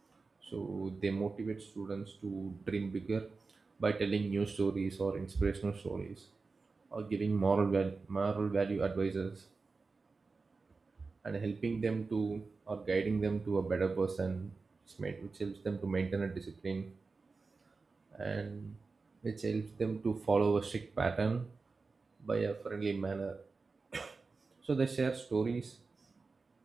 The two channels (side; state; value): left; quieter; 4.2 dB